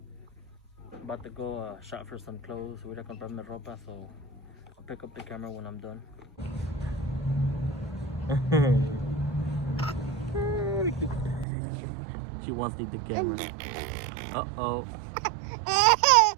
I'm about to go shop for some clothes. Voy a comprarme ropa, so I'll pick up the camera when I'm done. She wants to leave the camera. Uh-oh.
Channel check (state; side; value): drops out; left; at 11.5 s